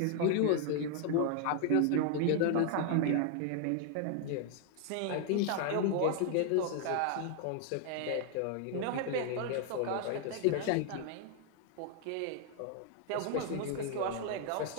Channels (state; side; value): different; both; correlation 0.00